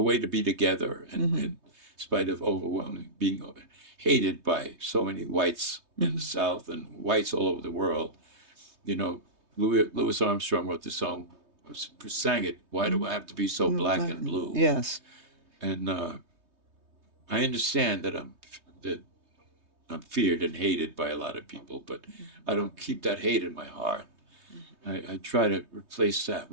way to be together, and in spite of overwhelming being hated by so many whites in the South and whites all over the world. Louis Armstrong wrote the song, sang it. Why do I have to be so black and blue? Yes. And I understand that I'm feared and hated by a lot of people, but I don't keep that hate in my heart. I try to replace that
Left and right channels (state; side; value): late; left; 3.2 ms